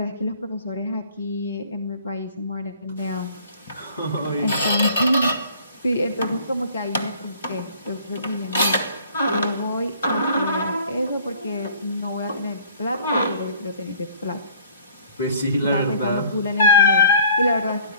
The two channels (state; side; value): inverted; both; correlation -0.54